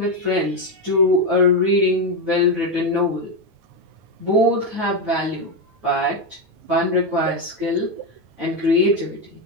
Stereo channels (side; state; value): left; late; 9.3 ms